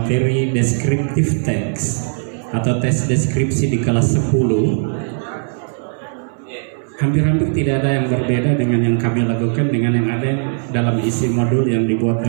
descriptive text atau tes deskripsi di kelas 10. Hampir-hampir tidak ada yang berbeda dengan yang kami lakukan dengan yang ada dalam isi modul yang dibuat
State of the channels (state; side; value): silent; left; 67 dB below the other